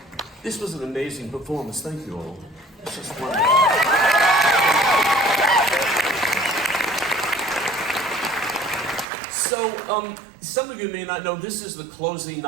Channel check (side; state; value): left; drops out; at 9.1 s